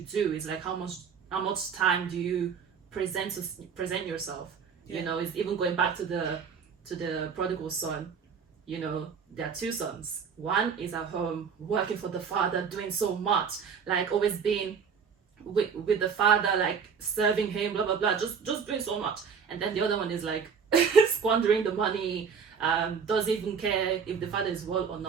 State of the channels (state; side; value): quieter; left; 6.4 dB